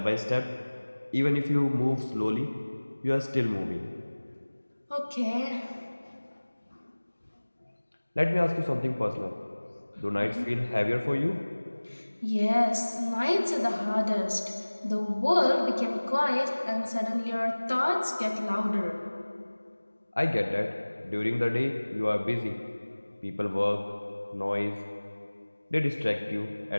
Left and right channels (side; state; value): both; inverted; correlation -1.00